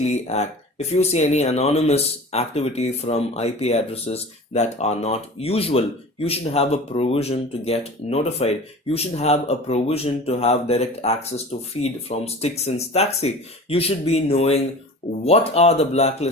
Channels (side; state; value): both; normal; correlation 0.38